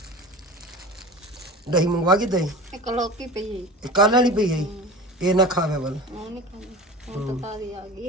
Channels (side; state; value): both; normal; correlation 0.35